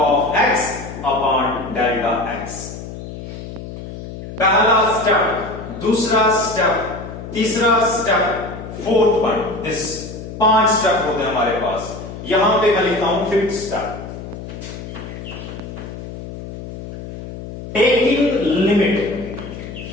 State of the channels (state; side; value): noise; left; hum, 11 dB below the sound